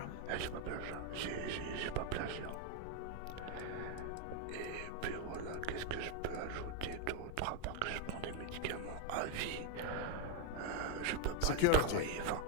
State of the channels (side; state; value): both; different; correlation 0.01